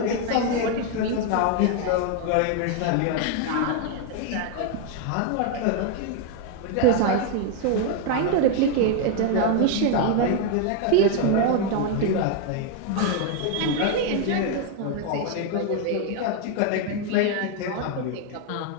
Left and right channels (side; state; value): both; different; correlation 0.01